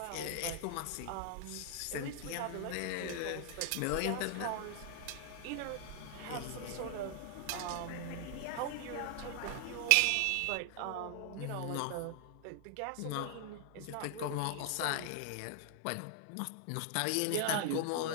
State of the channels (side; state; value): both; different; correlation 0.00